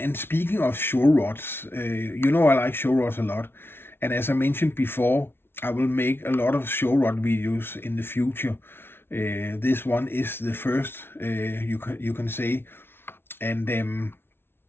speaking of show rods, I like show rods a lot, and as I mentioned before, I will make a lot of show rod videos in the future. This one is the first, you can say, and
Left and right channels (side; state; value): right; late; 0.11 ms